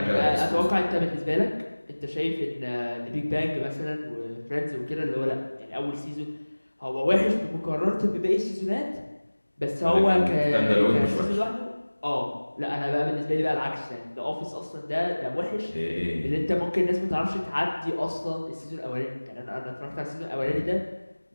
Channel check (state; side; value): inverted; both; correlation -1.00